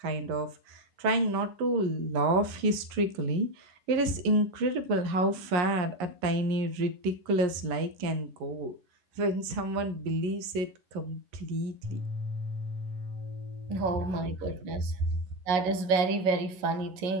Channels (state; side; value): late; left; 11 ms